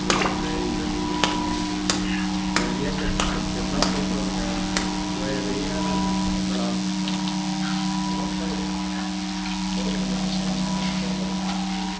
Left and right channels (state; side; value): identical; both; correlation 1.00